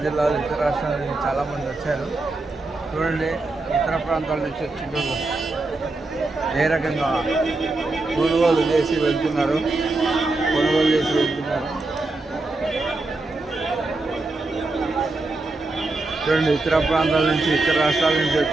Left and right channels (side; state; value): left; quieter; 3.2 dB